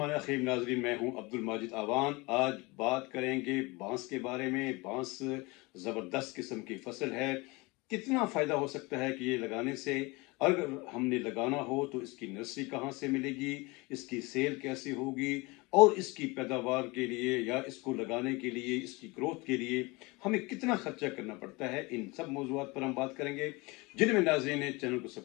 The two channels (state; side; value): quieter; right; 25.0 dB